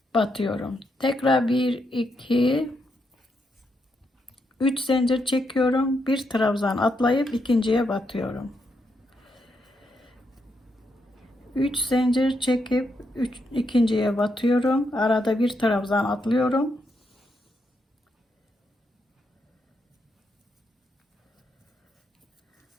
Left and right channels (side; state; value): both; normal; correlation 0.80